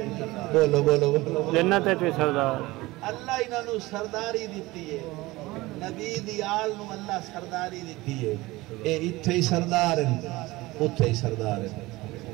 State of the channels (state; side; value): quieter; left; 20.1 dB